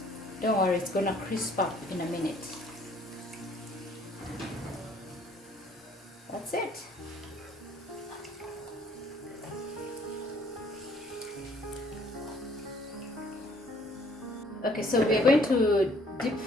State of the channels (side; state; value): both; normal; correlation 0.60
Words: Don't worry, it's gonna crisp up in a minute. That's it. Okay, so we're going to deep